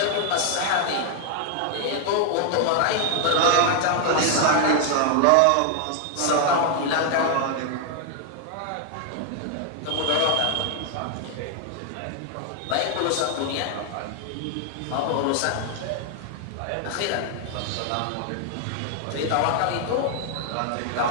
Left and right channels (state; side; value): different; both; correlation 0.00